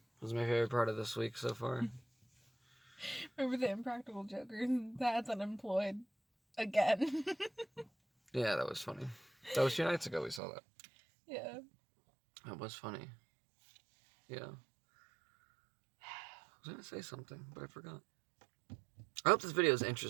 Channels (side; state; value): left; drops out; at 10.4 s